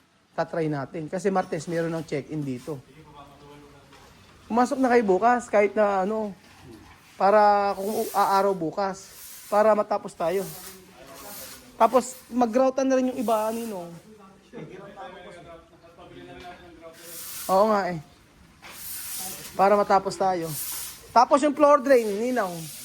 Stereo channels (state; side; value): identical; both; correlation 1.00